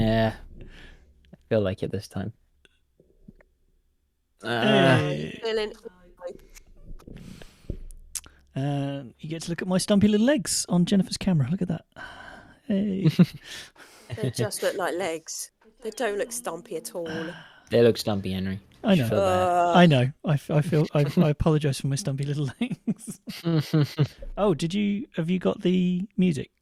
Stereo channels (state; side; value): identical; both; correlation 1.00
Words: I feel like it this time. Hey. Feeling. You get to look at my stumpy little legs on Jennifer's camera. Look at that. Hey. They just look like legs. They don't look stumpy at all. They look stumpy, Henry. I know. Feel bad. I know. I feel. I apologise for my stumpy little legs. Oh, have you got the music?